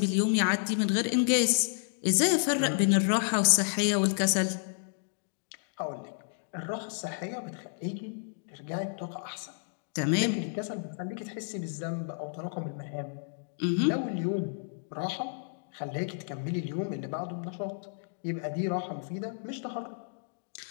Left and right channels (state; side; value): silent; right; digital silence